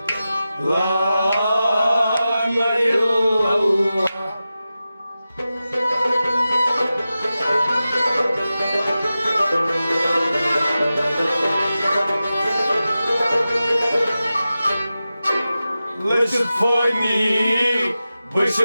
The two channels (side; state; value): both; inverted; correlation -0.93